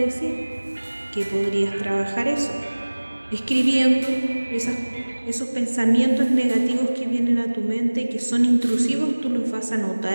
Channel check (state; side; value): inverted; both; correlation -1.00